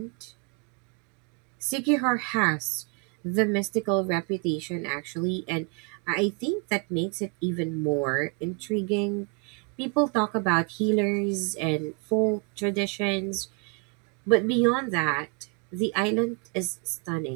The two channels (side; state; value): left; quieter; 34.5 dB